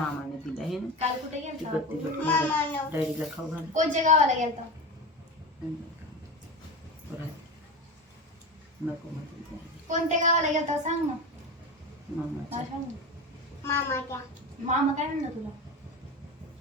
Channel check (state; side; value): normal; both; correlation 0.25